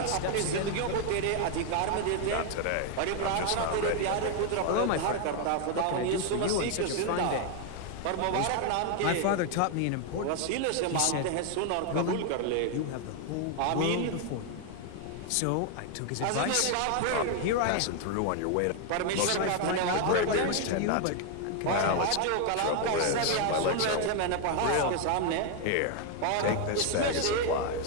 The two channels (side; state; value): both; different; correlation 0.00